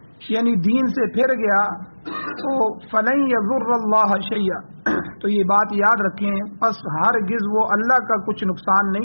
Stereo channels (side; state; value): both; inverted; correlation -1.00